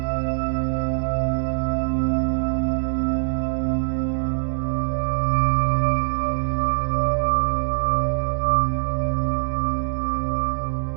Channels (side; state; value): left; silent; digital silence